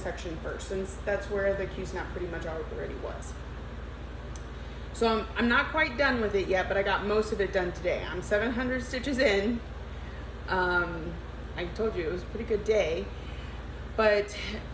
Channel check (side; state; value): both; identical; correlation 1.00